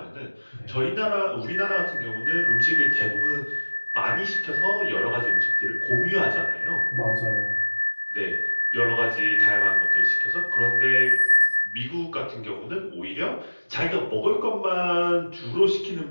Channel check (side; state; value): both; inverted; correlation -1.00